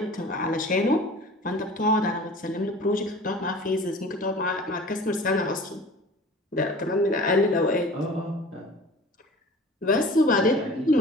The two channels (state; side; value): normal; both; correlation 0.42